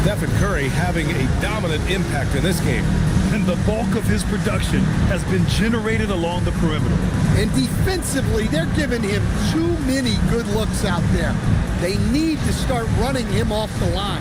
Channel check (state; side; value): identical; both; correlation 1.00